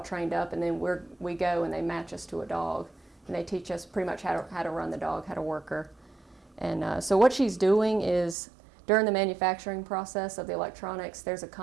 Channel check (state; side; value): drops out; left; at 8.3 s